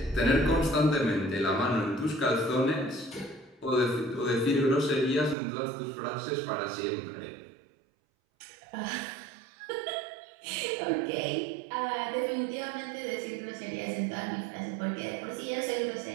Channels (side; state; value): left; drops out; at 5.4 s